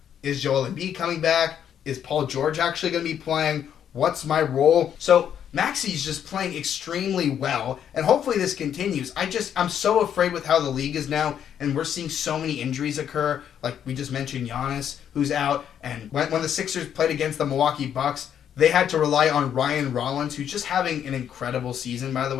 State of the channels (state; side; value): quieter; right; 9.1 dB